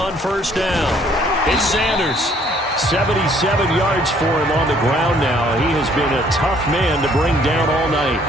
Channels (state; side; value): normal; both; correlation 0.62